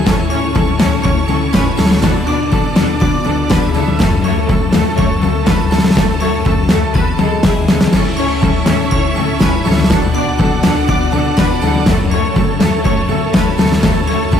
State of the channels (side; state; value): both; normal; correlation 0.73